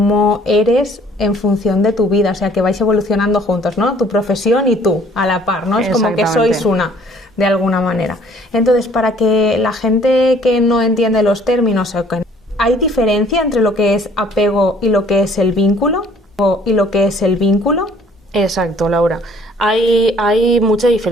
eres en función de tu vida, o sea que vais evolucionando juntos, ¿no? Tu profesión y tú, a la par, ¿no? Es como que sois una, de alguna manera. Entonces, para que la gente que no entiende los términos, ¿hay diferencia entre lo que es apego y lo que es el vínculo? Exacto, Laura. Hay mucha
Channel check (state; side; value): normal; both; correlation 0.57